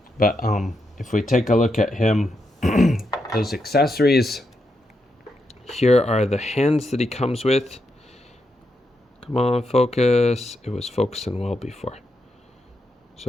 But if we take a look at him, those accessories, here are the hands that he comes with. Come on, focus. It was focusing well before.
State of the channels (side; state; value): both; normal; correlation 0.83